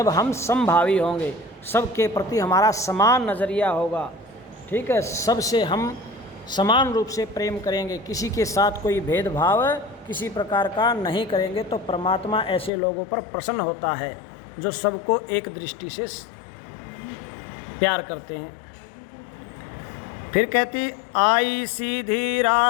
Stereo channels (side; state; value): right; drops out; at 12.7 s